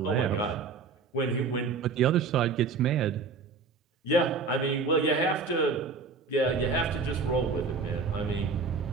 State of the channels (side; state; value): left; quieter; 4.6 dB